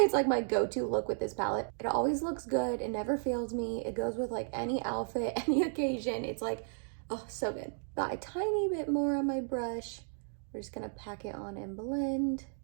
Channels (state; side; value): silent; left; digital silence